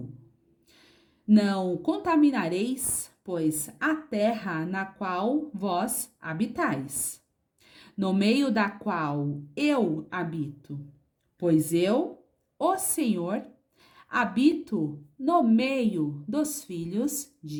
Não contaminareis, pois, a terra na qual vós habitais, no meio da qual eu habito, pois eu, o Senhor, habito no meio dos filhos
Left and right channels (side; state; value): both; identical; correlation 1.00